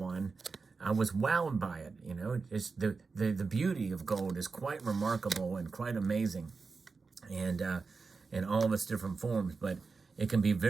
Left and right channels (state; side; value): quieter; left; 4.5 dB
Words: I was wowed by it. You know, it's the beauty of gold is quite remarkable and quite amazing, and in all of its different forms. But it can be a